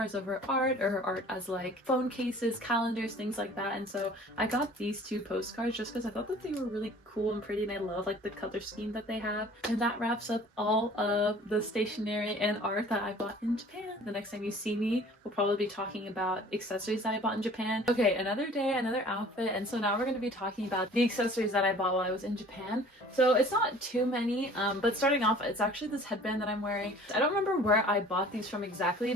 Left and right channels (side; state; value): both; normal; correlation 0.49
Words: of her art, or her art as like phone cases, calendars, things like that. And so I got these two postcards just because I thought that they were really cool and pretty, and I love like the color scheme that they have. And that wraps up all of the stationery and art that I bought in Japan. The next time you see me, we'll probably be talking about accessories that I bought in Japan. Okay, another day, another outfit, and so now we're going to be talking about the accessories that I bought while I was in Japan. So it's not too many, but starting off, it's actually this headband that I'm wearing. I don't remember where I bought these from exactly,